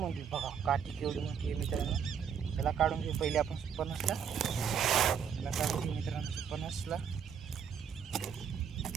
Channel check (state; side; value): quieter; left; 7.5 dB